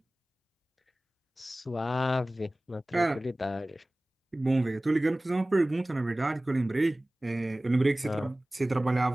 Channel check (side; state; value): both; normal; correlation 0.98